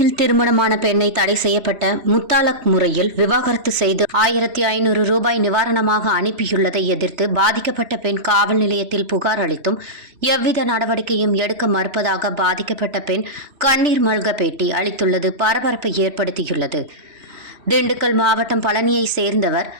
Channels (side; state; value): left; late; 3.1 ms